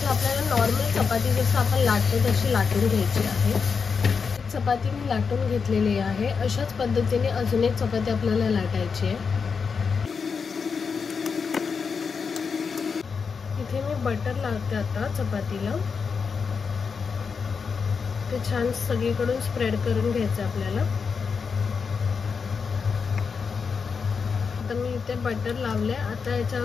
आपल्याला नॉर्मल चपाती जसं आपण लाटतो तशी लाटून घ्यायची आहे। चपाती मी लाटून घेतलेली आहे। अशाच पद्धतीने अजून एक चपाती आपल्याला लाटायची आहे। इथे मी बटर लावते आता चपातीला। ते छान सगळीकडून स्प्रेड करून घ्यायचं आपल्याला। आता मी इथे बटर लावले। आता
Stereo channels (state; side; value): quieter; right; 5.6 dB